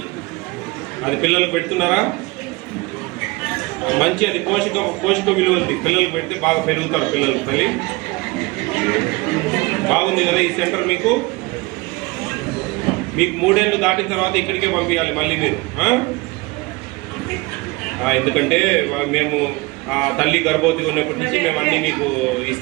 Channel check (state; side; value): quieter; left; 24.1 dB